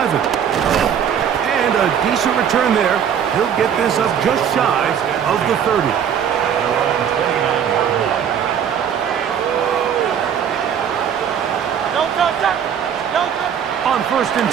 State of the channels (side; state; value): left; quieter; 8.4 dB